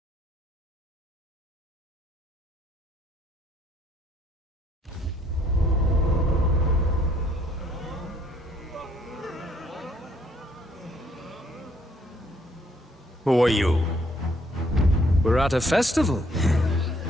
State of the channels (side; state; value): both; normal; correlation 0.66